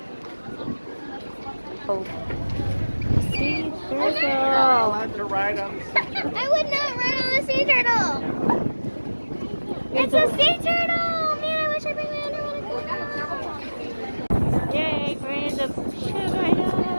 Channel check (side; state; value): both; inverted; correlation -1.00